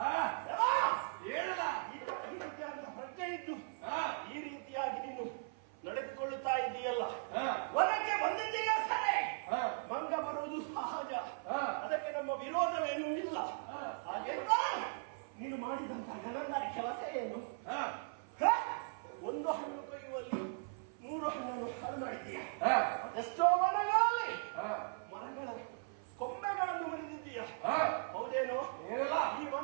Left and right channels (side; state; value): left; silent; 52 dB below the other